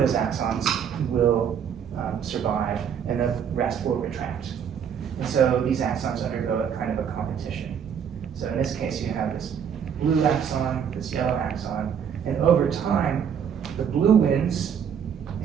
axons will survive and the rest will retract. And so these axons undergo a kind of a competition. So in this case, you have this blue axon, this yellow axon, and over time, the blue wins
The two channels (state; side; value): quieter; left; 7.9 dB